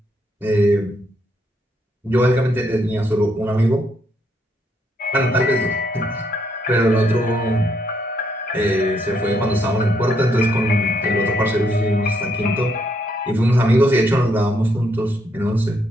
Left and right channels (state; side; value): normal; both; correlation 0.74